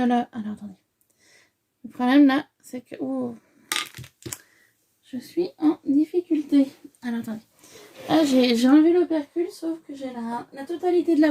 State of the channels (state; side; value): identical; both; correlation 1.00